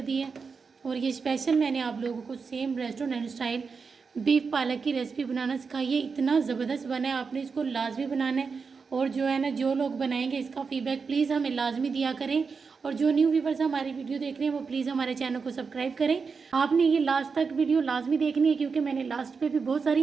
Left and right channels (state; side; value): quieter; left; 5.2 dB